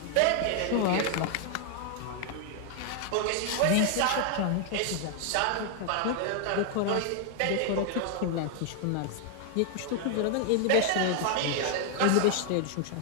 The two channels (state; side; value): different; both; correlation 0.00